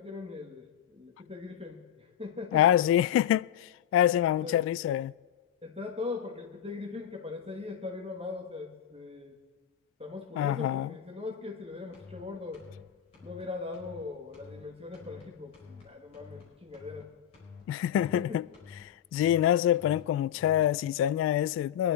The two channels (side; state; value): right; quieter; 10.2 dB